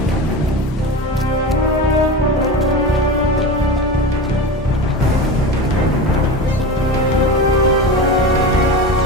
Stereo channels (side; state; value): both; normal; correlation 0.27